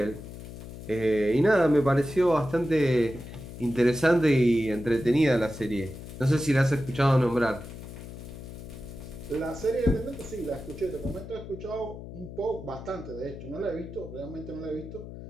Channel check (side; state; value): left; noise; hum, 12 dB below the sound